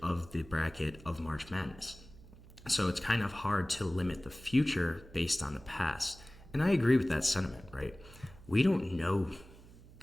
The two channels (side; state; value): right; noise; hum, 20 dB below the sound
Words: of the bracket of March Madness. So it's kind of hard to limit the future based on the past. And I agree with that sentiment, right? We don't know